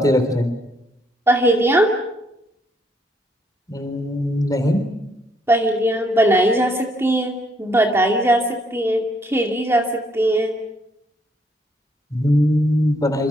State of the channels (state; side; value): normal; both; correlation 0.71